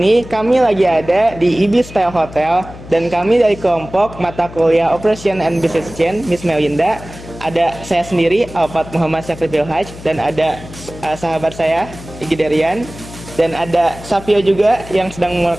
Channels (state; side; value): noise; left; hum, 16 dB below the sound